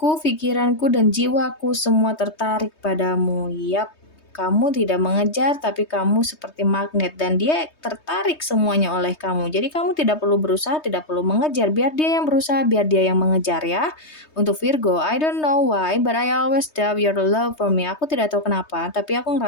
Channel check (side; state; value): right; late; 3.2 ms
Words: pikiranku, dan jiwaku semua tertarik padamu. Yap, kamu tidak mengejar, tapi kamu seperti magnet dan dia tertarik semuanya oleh kamu. Jadi kamu tidak perlu berusaha, tidak perlu mengejar. Biar dia yang berusaha, biar dia yang mengejar ya. Untuk Virgo, I don't know why, but I always doubt your love for me. Aku tidak tahu kenapa, tapi aku